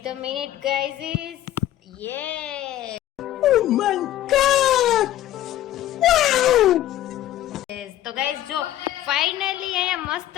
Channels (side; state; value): right; quieter; 13.5 dB